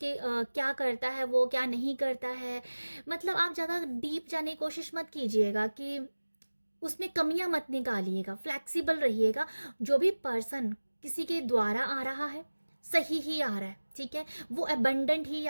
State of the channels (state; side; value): inverted; both; correlation -1.00